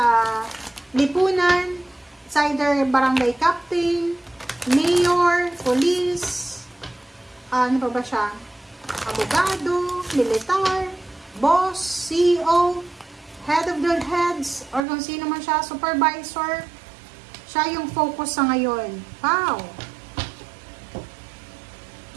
lipunan. It's either barangay captain, mayor, police, ano pa ba siya? Abogado, militar, boss, CEO, head of the heads, or kung sino man siya, supervisor. Siya yung focus sa ngayon. Wow!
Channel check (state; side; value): drops out; left; at 14.9 s